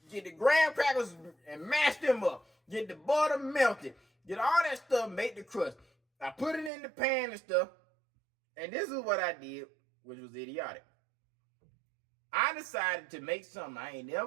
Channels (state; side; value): drops out; left; at 6.7 s